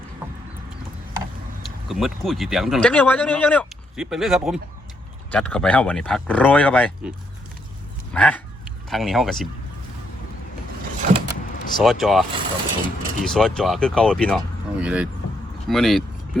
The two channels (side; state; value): both; normal; correlation 0.75